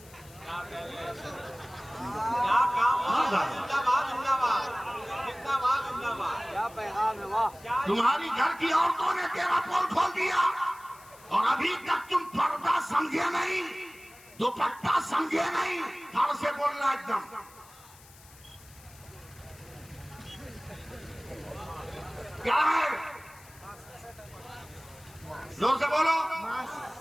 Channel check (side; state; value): left; noise; hiss, 23 dB below the sound